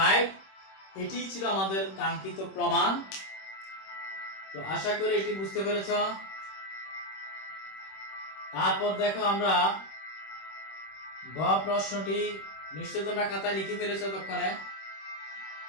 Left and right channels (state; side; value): late; right; 26 ms